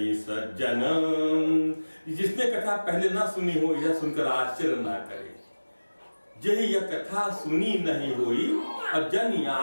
सज्जन, जिसने कथा पहले ना सुनी हो यह सुनकर आश्चर्य ना करे। यही यह कथा सुनी नहीं हुई और जन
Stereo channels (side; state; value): both; inverted; correlation -1.00